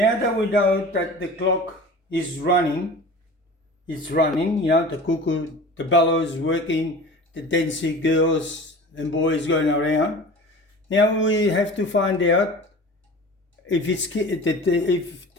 that we know that the clock is running, it's running, the cuckoo, the bellow is working, the dancing girls and boys going around. Now we have to find out if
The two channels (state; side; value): normal; both; correlation 0.38